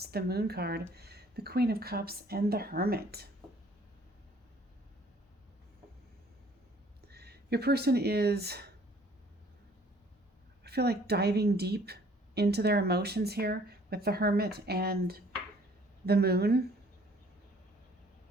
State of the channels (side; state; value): both; normal; correlation 0.57